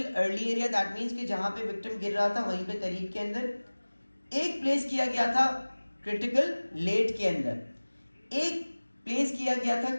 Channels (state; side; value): inverted; both; correlation -1.00